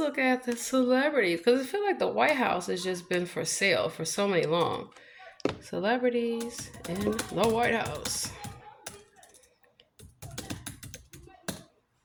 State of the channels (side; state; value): both; identical; correlation 1.00